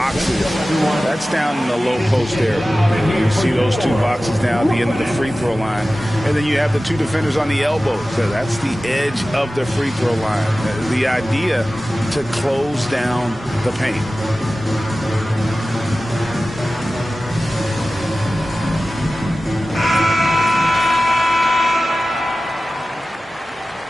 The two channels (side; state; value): both; normal; correlation 0.96